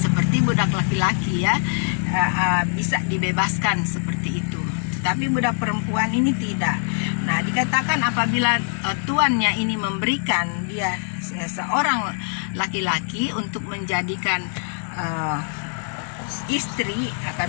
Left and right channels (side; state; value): right; silent; 63 dB below the other